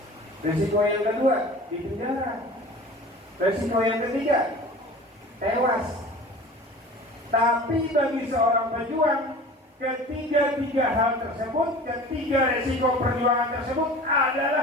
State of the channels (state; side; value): normal; both; correlation 0.40